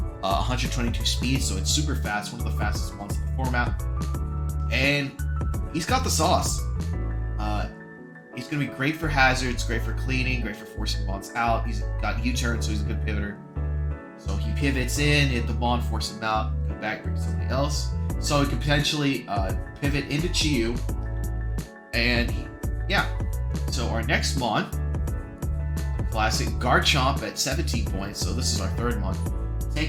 122 speed, so it's super fast, one of the fastest ones in the format. And he's got the sauce. He's going to be great for hazards, great for cleaning, great for forcing bonds out. He's got U-turn, so he's a good pivoter. So he pivots in, hit the bond, force him out, go back, bring somebody else. So he can potentially pivot into Chiyu. And yeah, so our next mon, classic Garchomp at 17 points. So this is our third mon.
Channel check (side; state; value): both; identical; correlation 1.00